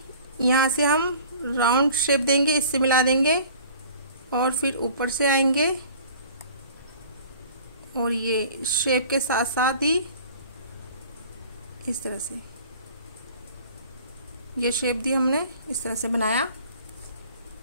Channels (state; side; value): inverted; both; correlation -0.48